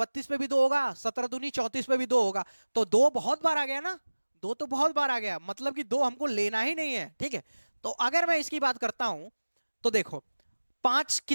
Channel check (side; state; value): both; inverted; correlation -1.00